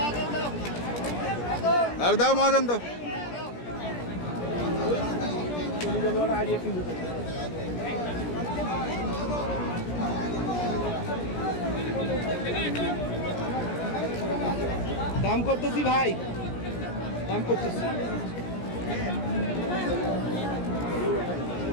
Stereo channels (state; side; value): late; right; 17 ms